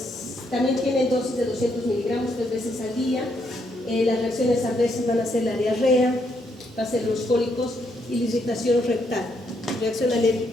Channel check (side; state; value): both; normal; correlation 0.75